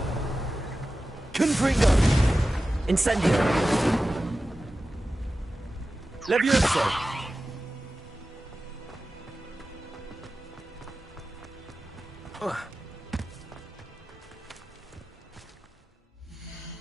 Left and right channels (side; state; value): both; normal; correlation 0.94